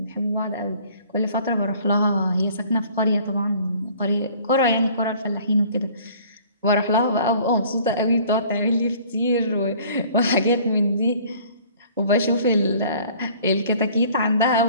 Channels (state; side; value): inverted; both; correlation -0.53